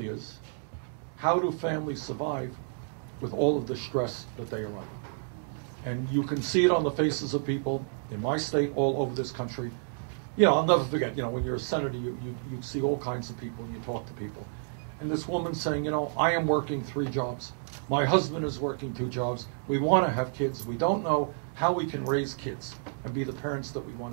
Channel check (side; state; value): left; silent; digital silence